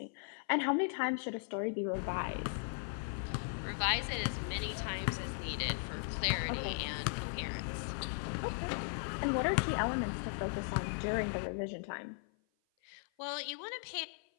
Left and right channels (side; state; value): right; silent; 53 dB below the other